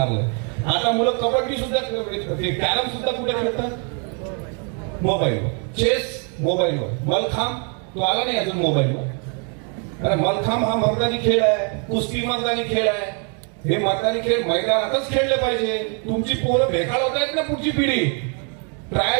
आता मुलं कबड्डी सुद्धा, कॅरम सुद्धा कुठे खेळतात? मोबाईलवर. चेस मोबाईलवर. मलखांब तो आला नाही अजून मोबाईलवर. अरे मलखांब हा मर्दानी खेळ आहे, कुस्ती मर्दानी खेळ आहे. हे मर्दानी खेळ मैदानातच खेळले पाहिजे. तुमची पोरं भेकाळ होत आहेत ना, पुढची पिढी.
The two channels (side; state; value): left; quieter; 39.0 dB